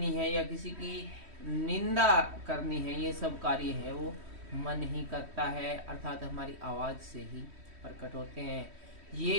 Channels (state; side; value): late; left; 3.1 ms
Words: है, या किसी की निंदा करनी है। ये सब कार्य है वो मन ही करता है, अर्थात हमारी आवाज से ही प्रकट होते हैं।